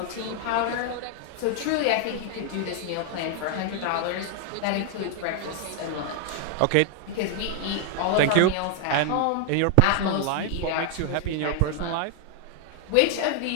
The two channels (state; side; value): different; both; correlation 0.00